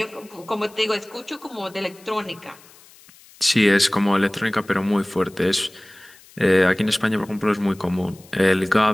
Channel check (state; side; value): noise; left; hiss, 25 dB below the sound